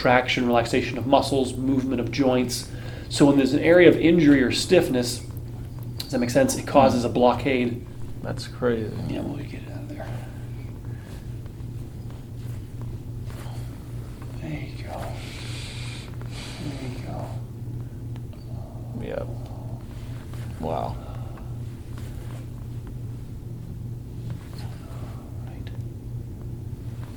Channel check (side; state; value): both; identical; correlation 1.00